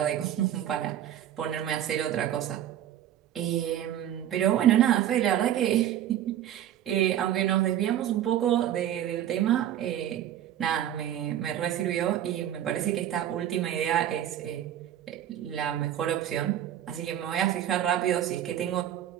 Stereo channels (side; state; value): left; quieter; 11.4 dB